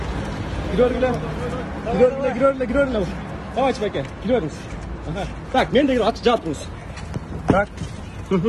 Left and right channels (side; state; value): both; identical; correlation 1.00